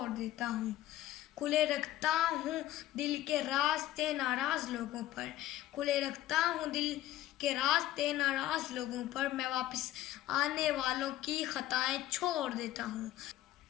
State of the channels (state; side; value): quieter; right; 14.1 dB